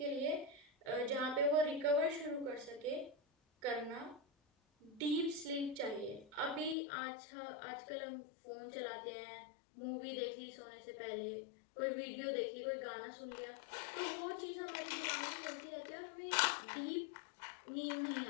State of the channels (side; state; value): right; drops out; at 6.8 s